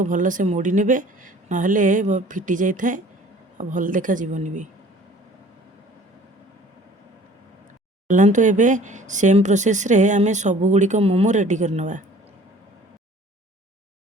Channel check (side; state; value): both; normal; correlation 0.49